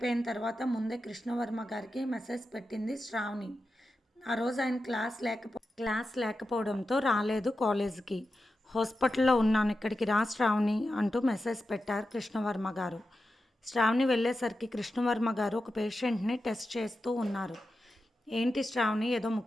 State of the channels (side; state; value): both; normal; correlation 0.90